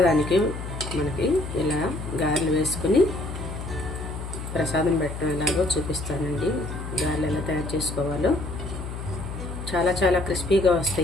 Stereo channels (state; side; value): noise; left; hum, 8 dB below the sound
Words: మనకి ఇలా గారెలు వేసుకుని ప్రసాదం పెట్టడం ఎలాగో చూపిస్తానండి. గారెలు ఎలా తయారు చేసుకోవాలో చాలా చాలా క్రిస్పీగా